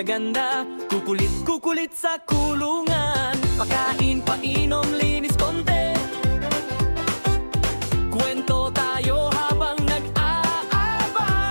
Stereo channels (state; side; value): inverted; both; correlation -1.00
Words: kukulit sa kulungan. Pakain, painom, linis konti. Kwento tayo habang